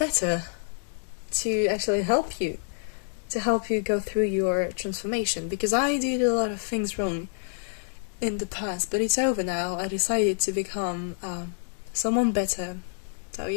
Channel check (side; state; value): right; silent; digital silence